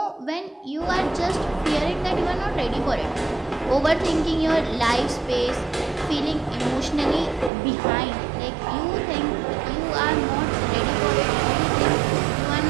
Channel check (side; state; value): left; drops out; at 7.5 s